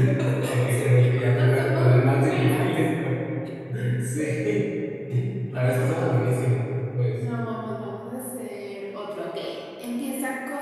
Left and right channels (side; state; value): both; identical; correlation 1.00